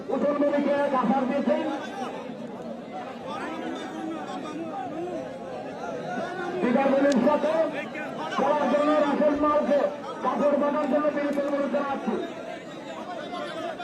উঠন নদীকে কাফার দিয়েছেন। বিকাশের সাথে খেলার জন্য রাসেল মালকে কাপড় বানার জন্য বিরোধী অনুরোধ জানাচ্ছি।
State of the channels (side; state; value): both; identical; correlation 1.00